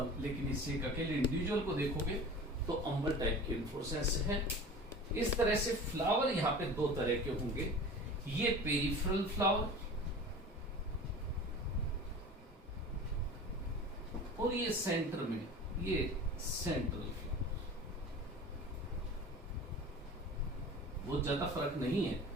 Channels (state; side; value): normal; both; correlation 0.37